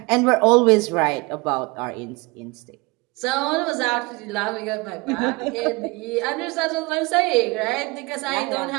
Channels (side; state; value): left; quieter; 25.3 dB